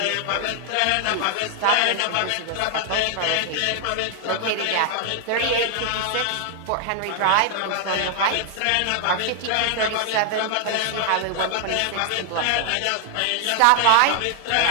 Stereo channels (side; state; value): both; different; correlation 0.00